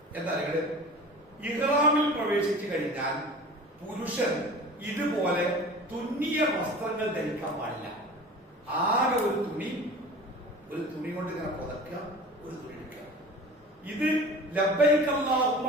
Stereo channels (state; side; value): normal; both; correlation 0.39